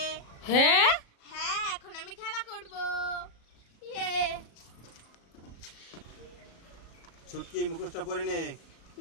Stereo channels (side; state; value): right; late; 37 ms